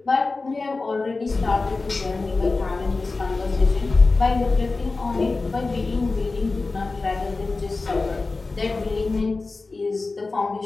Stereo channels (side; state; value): right; quieter; 3.7 dB